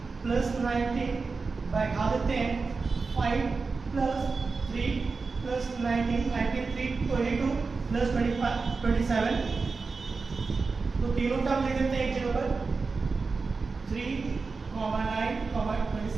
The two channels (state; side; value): quieter; left; 4.4 dB